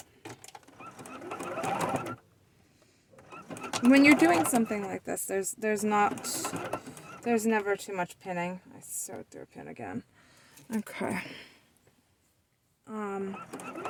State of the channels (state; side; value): identical; both; correlation 1.00